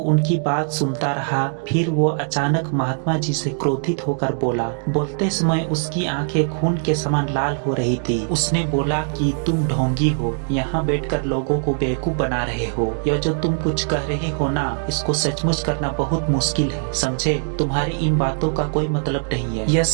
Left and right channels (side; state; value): left; silent; 60 dB below the other